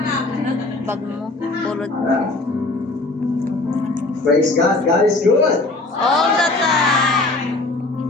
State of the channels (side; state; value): right; quieter; 3.1 dB